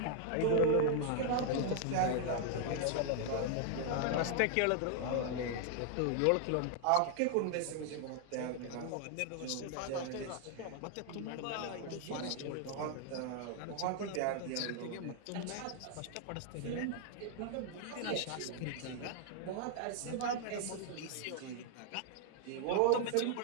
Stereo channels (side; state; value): both; different; correlation 0.00